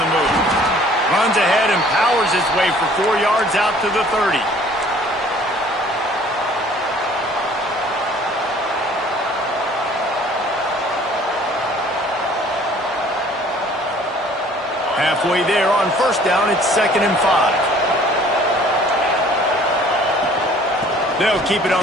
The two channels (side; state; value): both; normal; correlation 0.54